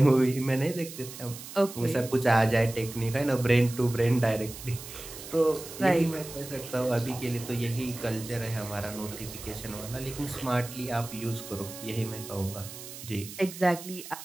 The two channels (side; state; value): right; noise; hiss, 13 dB below the sound